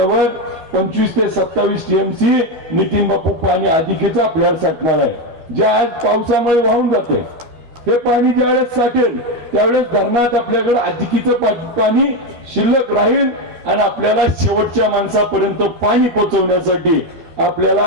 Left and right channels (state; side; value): late; left; 12 ms